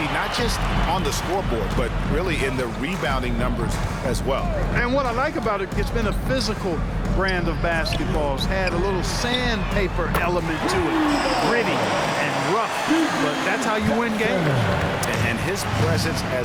not just on the scoreboard, but really in the rebounding numbers as well. And what I like about it, it's been a physical brand of basketball. It's had a little sandpaper element to it. Gritty and rough, but that's how you win games. And his presence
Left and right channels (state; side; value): identical; both; correlation 1.00